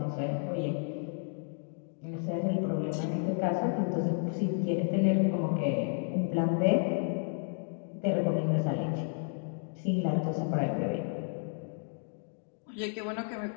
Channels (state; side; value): silent; right; 57 dB below the other